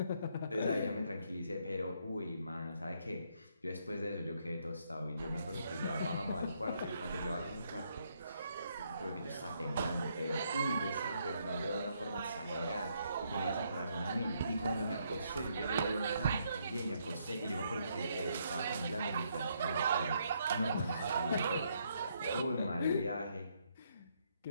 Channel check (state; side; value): inverted; both; correlation -0.74